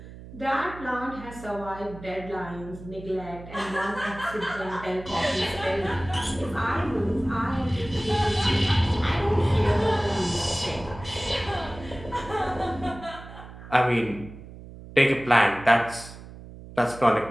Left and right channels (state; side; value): noise; right; hum, 15 dB below the sound